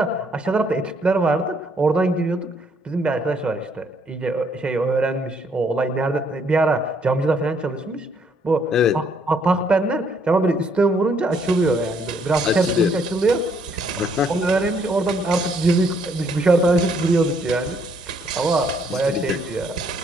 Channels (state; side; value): normal; both; correlation 0.68